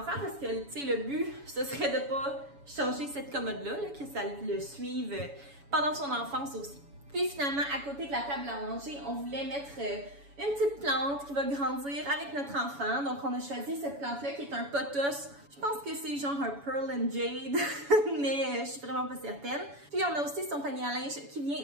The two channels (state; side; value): late; left; 7.1 ms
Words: parce que, tu sais, le but, ce serait de pas changer cette commode-là, que ça le suive pendant son enfance aussi. Puis finalement, à côté de la table à manger, on voulait mettre une petite plante qui va grandir avec notre enfant. Donc on a choisi cette plante-là qui est un pothos. Je pense que c'est genre un Pearl and Jade, mais je suis vraiment pas certaine. Puis on a aussi son panier à linge qui